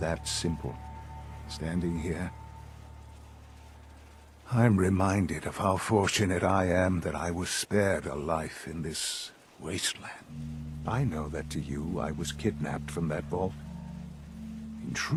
simple. Standing here, I'm reminded of how fortunate I am that I was spared a life in this wasteland. I know that to you, I was kidnapped from that vault. In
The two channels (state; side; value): identical; both; correlation 1.00